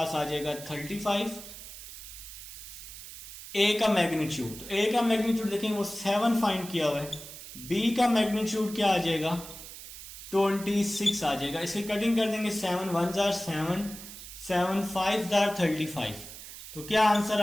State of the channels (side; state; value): right; noise; hiss, 13 dB below the sound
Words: आ जाएगा 35, a का मैग्नीट्यूड, तो a का मैग्नीट्यूड देखेंगे वो 7 फाइंड किया हुआ है, b का मैग्नीट्यूड क्या आ जाएगा, 26 आ जाएगा। इसे कटिंग कर देंगे, 7 1s are 7, 7 5s are 35, तो क्या आंसर